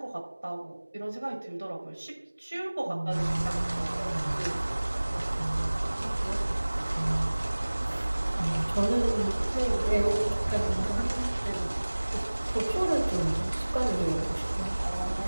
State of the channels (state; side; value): inverted; both; correlation -1.00